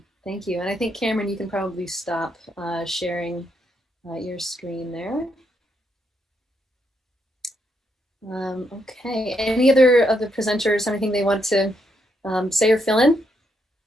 thank you. And I think Cameron, you can probably stop sharing your screen there. Okay, any other of the presenters have anything they want to say or fill in?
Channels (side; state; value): both; normal; correlation 0.78